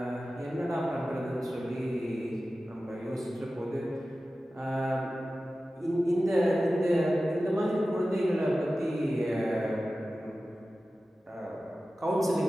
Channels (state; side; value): normal; both; correlation 0.95